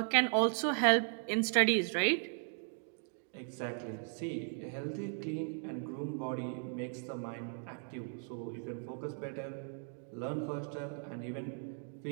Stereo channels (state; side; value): silent; left; 53 dB below the other